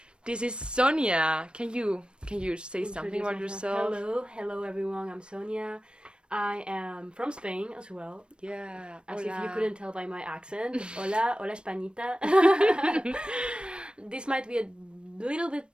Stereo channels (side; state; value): left; late; 0.055 ms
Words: This is Sonia. Can you say something about yourself? Hello everyone. I'm Sonia. I am from Spain as well. Yeah. As Hola. if you couldn't tell by my accent. Hola Españita. This might be a little bit